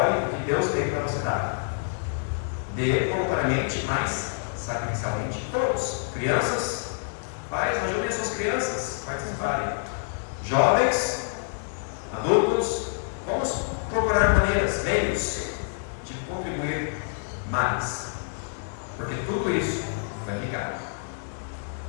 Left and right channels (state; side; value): silent; right; digital silence